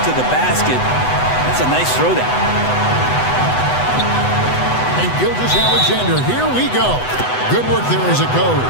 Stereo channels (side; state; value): right; late; 8.0 ms